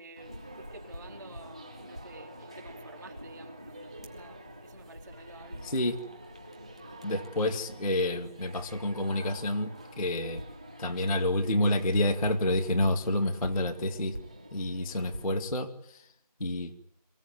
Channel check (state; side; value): inverted; both; correlation -0.63